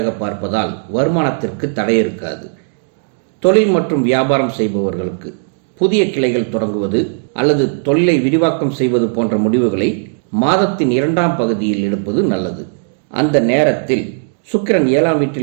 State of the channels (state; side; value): silent; left; digital silence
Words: பார்ப்பதால் வருமானத்திற்கு தடை இருக்காது. தொழில் மற்றும் வியாபாரம் செய்பவர்களுக்கு புதிய கிளைகள் தொடங்குவது அல்லது தொழிலை விரிவாக்கம் செய்வது போன்ற முடிவுகளை மாதத்தின் 2ஆம் பகுதியில் எடுப்பது நல்லது. அந்த நேரத்தில் சுக்கிரன் 7ஆம்